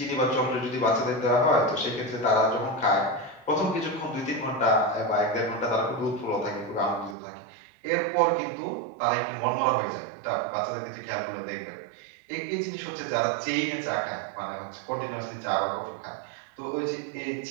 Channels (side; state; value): left; drops out; at 7.2 s